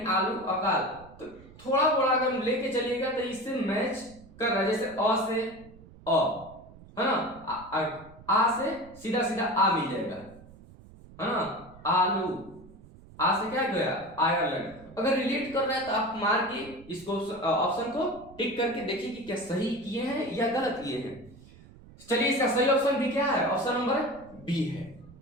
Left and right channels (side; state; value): right; noise; rumble, 21 dB below the sound